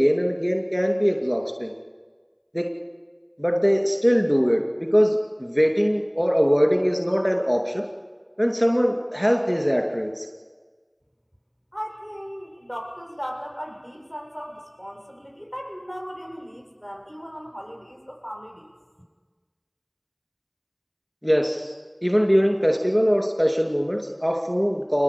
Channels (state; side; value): identical; both; correlation 1.00